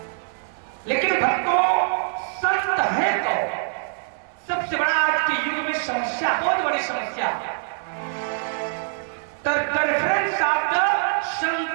लेकिन भक्तों, संत है तो सबसे बड़ा आज के युग में समस्या, बहुत बड़ी समस्या, रेफरेंस ऑफ द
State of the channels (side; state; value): left; silent; 63 dB below the other